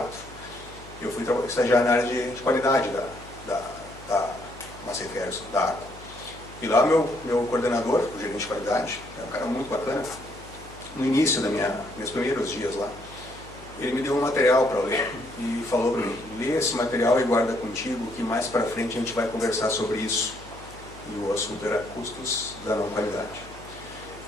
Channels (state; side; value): noise; left; hum, 19 dB below the sound